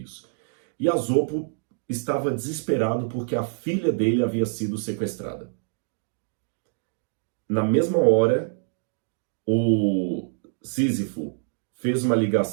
E Asopo estava desesperado porque a filha dele havia sido sequestrada. Na mesma hora, o Sísifo fez uma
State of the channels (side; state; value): left; silent; digital silence